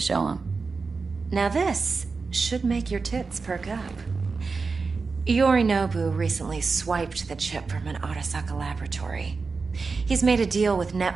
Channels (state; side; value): quieter; left; 4.5 dB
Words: them. Now this should make your tits perk up. Yorinobu recently swiped the chip from an Arasaka laboratory. He's made a deal with